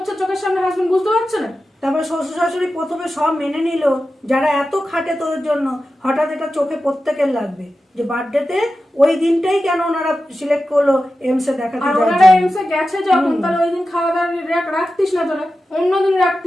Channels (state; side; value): normal; both; correlation 0.92